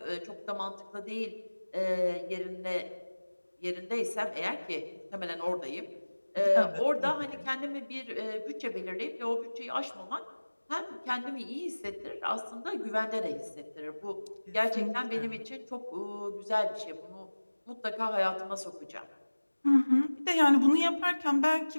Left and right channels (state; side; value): inverted; both; correlation -1.00